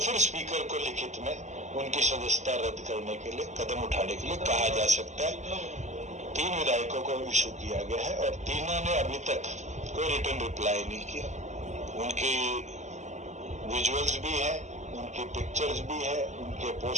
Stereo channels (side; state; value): left; late; 0.34 ms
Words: स्पीकर को लिखित में उनकी सदस्यता रद्द करने के लिए कदम उठाने के लिए कहा जा सकता है। 3 विधायकों को इशू किया गया है और तीनों ने अभी तक कोई रिटर्न रिप्लाई नहीं किया। उनकी विजुअल्स भी है, उनकी पिक्चर्स भी है, उनके